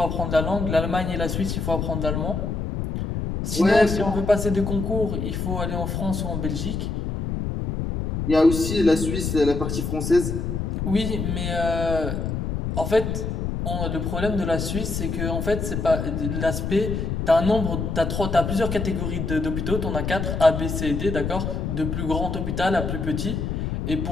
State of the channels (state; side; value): noise; left; rumble, 2 dB below the sound